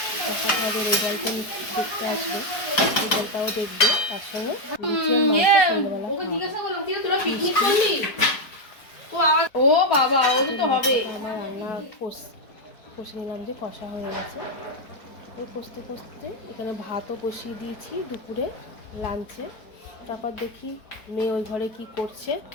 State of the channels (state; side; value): late; right; 4.6 ms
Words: দেখাতে হবে, রেজাল্টটা দেখতে আসবে, রেজাল্টটাও দেখবে, তার সঙ্গে ও বাবা ও তো হবে। আমার রান্না কষে নিলাম, যে কষা হয়ে গেছে। ওই কষতে কষতে এখানে ভাতও বসিয়ে দিয়েছি দুপুরে লাঞ্চে। তারপর দেখি মেয়ে ওই ঘরে কি করছে।